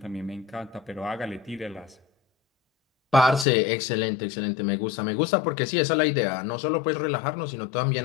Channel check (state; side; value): drops out; right; at 3.5 s